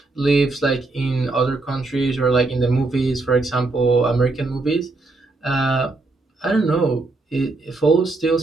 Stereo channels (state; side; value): quieter; left; 3.3 dB